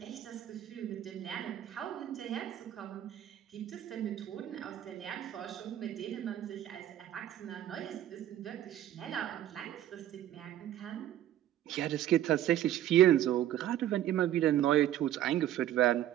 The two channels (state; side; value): quieter; left; 12.3 dB